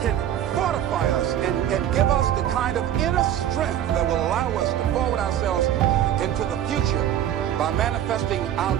fortify us and give us the kind of inner strength that will allow us to forward ourselves into the future by manifesting our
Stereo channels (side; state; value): left; quieter; 10.9 dB